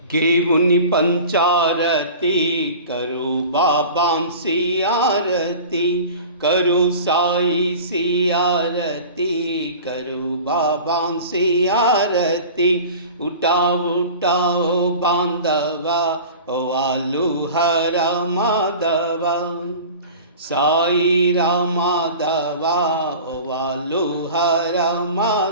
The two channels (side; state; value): both; inverted; correlation -0.38